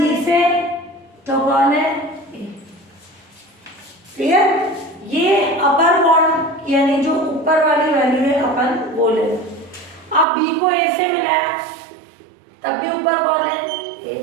से तो कौन है, ए, क्लियर। ये अपर बाउंड यानी जो ऊपर वाली वैल्यू है अपन वो ले। अब बी को ए से मिला है तब भी ऊपर कौन है, ए।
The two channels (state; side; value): drops out; left; at 10.2 s